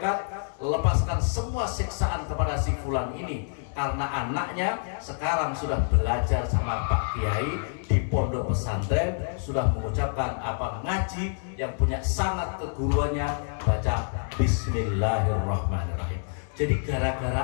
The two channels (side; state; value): right; silent; 60 dB below the other